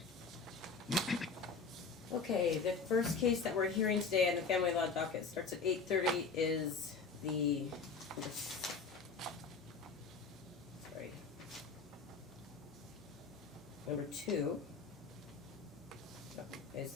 Okay, the first case that we're hearing today on the family law docket starts at 8:30 is the, sorry, number 2 is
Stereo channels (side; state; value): right; quieter; 4.7 dB